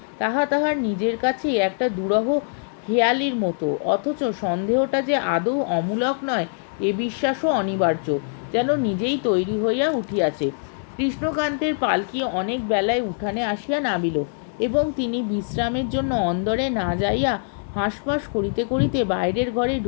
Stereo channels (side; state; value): right; silent; digital silence